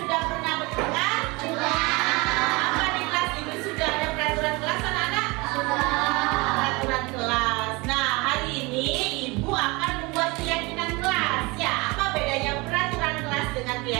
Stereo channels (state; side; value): quieter; left; 25.2 dB